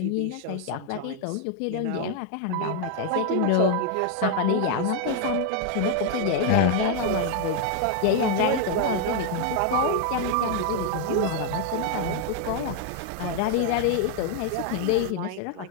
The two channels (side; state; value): both; different; correlation 0.00